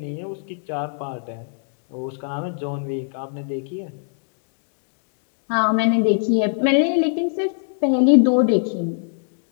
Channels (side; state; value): right; silent; digital silence